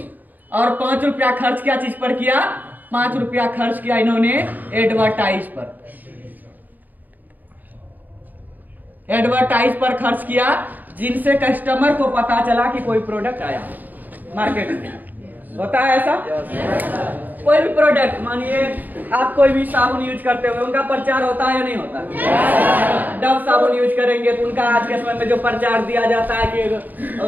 और 5 रुपया खर्च क्या चीज पर किया, 5 रुपया खर्च किया इन्होंने एडवर्टाइज पर, एडवर्टाइज पर खर्च किया, जिनसे कस्टमर को पता चला कि कोई प्रोडक्ट आया मार्केट में। होता है ऐसा? कोई भी प्रोडक्ट, मानिए आप कोई भी साबुन यूज करते हुए उनका प्रचार होता है या नहीं होता? डव साबुन यूज करेंगे तो उनका आज के समय में जो प्रचार दिया जाता है कि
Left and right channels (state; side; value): late; left; 0.085 ms